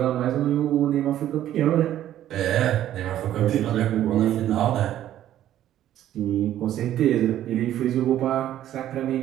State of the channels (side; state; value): left; quieter; 12.1 dB